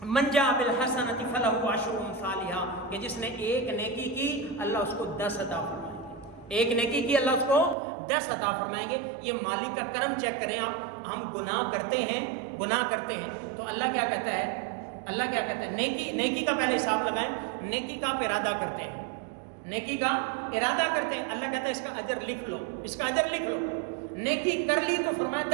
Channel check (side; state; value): left; drops out; at 7.8 s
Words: من جاء بالحسنۃ فلہ عشر امثالھا، کہ جس نے ایک نیکی کی اللہ اس کو 10 عطا فرمائیں گے. ایک نیکی کی اللہ اس کو 10 عطا فرمائیں گے. یہ مالک کا کرم چیک کریں آپ. ہم گناہ کرتے ہیں تو اللہ کیا کہتا ہے؟ اللہ کیا کہتا ہے؟ نیکی کا پہلے حساب لگائیں. نیکی کا آپ ارادہ کرتے ہیں، نیکی کا ارادہ کرتے ہیں، اللہ کہتا ہے اس کا اجر لکھ لو، اس کا اجر لکھ لو. نیکی کر لی تو فرمایا